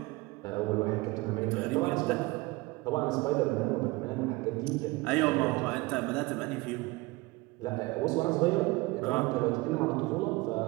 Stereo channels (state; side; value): quieter; left; 22.6 dB